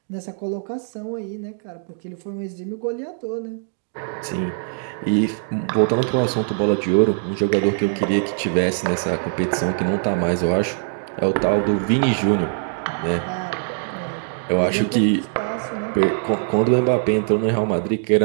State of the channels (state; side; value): silent; left; digital silence